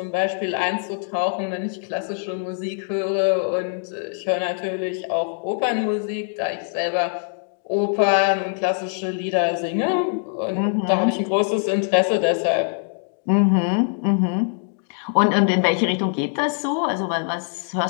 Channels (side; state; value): right; silent; digital silence